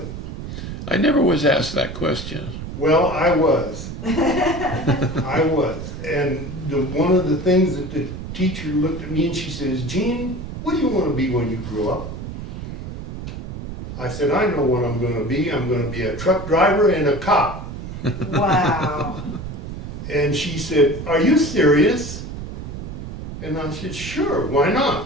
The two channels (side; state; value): right; noise; rumble, 8 dB below the sound